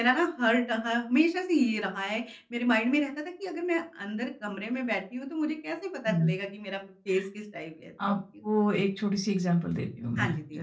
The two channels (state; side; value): identical; both; correlation 1.00